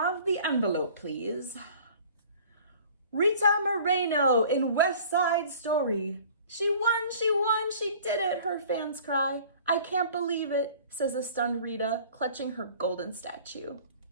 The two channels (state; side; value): inverted; both; correlation -0.48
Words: the envelope, please? Rita Moreno in West Side Story. She won, she did it, her fans cry. I can't believe it, says a stunned Rita, clutching her golden statue.